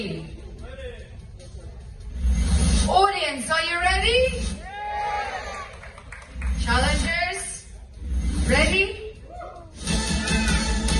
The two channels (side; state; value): both; identical; correlation 1.00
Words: Audience, are you ready? Challengers, ready?